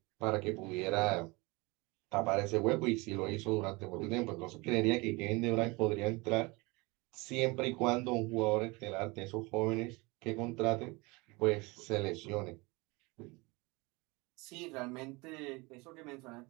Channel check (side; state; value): left; quieter; 25.3 dB